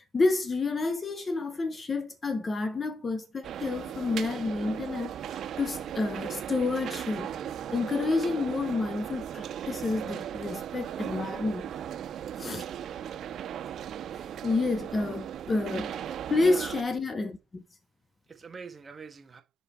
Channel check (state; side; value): normal; both; correlation 0.83